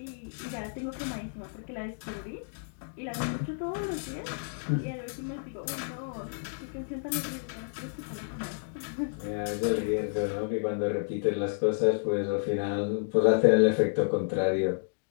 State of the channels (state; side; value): silent; right; digital silence